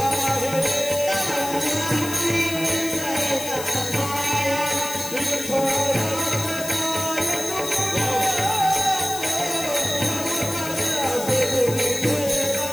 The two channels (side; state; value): left; noise; hiss, 9 dB below the sound